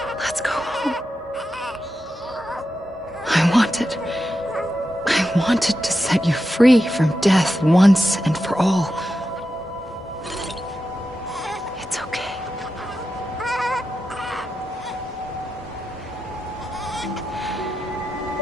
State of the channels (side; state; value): both; normal; correlation 0.88